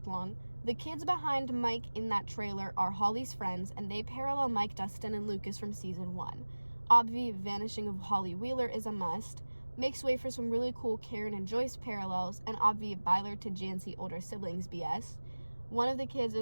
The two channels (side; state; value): both; inverted; correlation -1.00